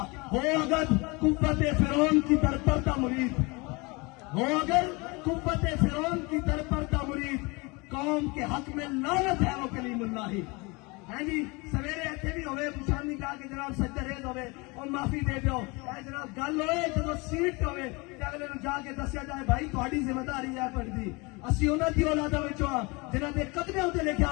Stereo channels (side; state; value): right; quieter; 26.8 dB